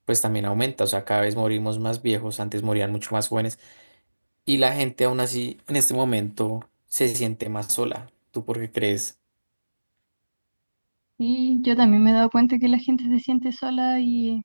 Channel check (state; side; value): inverted; both; correlation -1.00